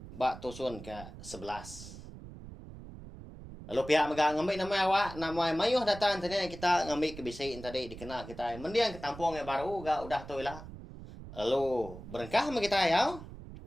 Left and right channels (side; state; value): right; noise; rumble, 14 dB below the sound